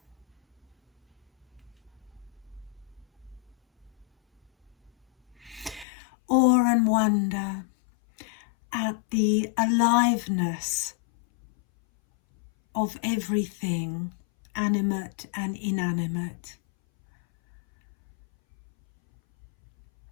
Awe and wonder at the aliveness of everything, animate and inanimate.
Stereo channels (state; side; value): drops out; right; at 5.9 s